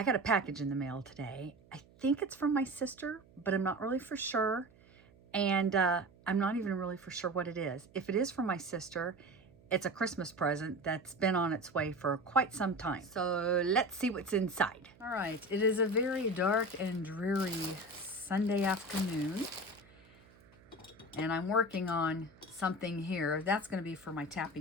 got a package in the mail today. I think it's from my sister, but I'm not really for sure, and I'm not even really for sure what it is. If it is from my sister, it's a Christmas present that's been on its way for quite some time. So let's see what's inside. All right, it is a very dark and dreary Sunday afternoon. And I'm working on something here. That's going to be for my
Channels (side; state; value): right; noise; hum, 27 dB below the sound